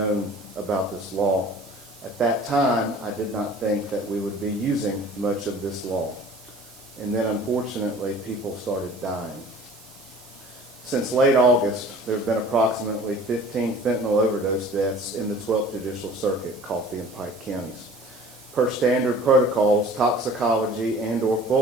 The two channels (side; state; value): right; noise; hiss, 22 dB below the sound